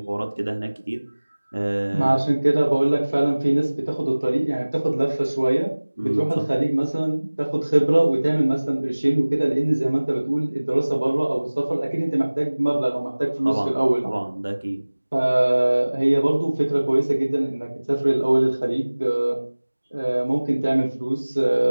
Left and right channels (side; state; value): both; inverted; correlation -1.00